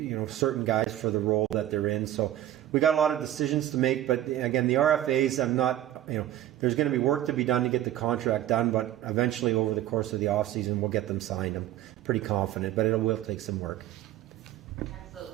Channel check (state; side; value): quieter; left; 13.0 dB